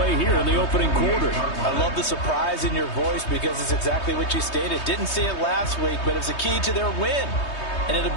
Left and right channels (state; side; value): late; right; 3.2 ms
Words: here in the opening quarter. I love the surprise in your voice because it's exactly what you stated. Didn't see it last week, but it's a key to their win. And it'll